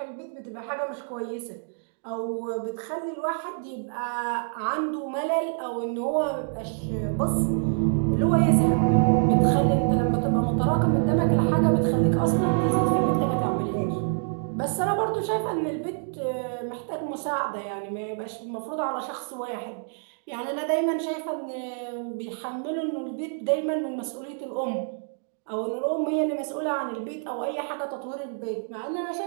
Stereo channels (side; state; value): left; silent; 60 dB below the other